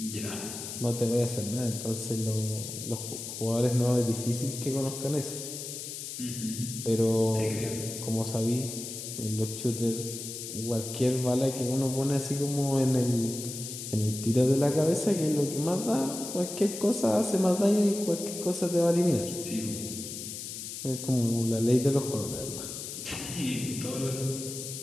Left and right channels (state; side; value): noise; left; hiss, 8 dB below the sound